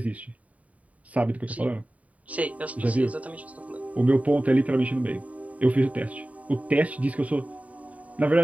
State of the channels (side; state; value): left; late; 0.069 ms